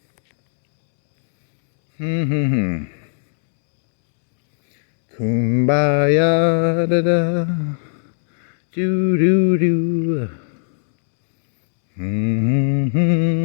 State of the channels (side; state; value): right; silent; digital silence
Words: Kumbaya, da da, do do do.